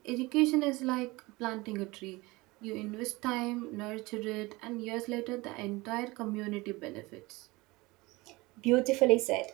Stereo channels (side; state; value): left; quieter; 22.3 dB